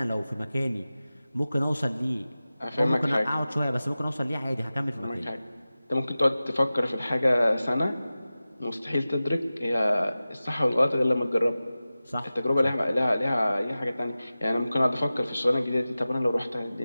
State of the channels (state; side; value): inverted; both; correlation -0.96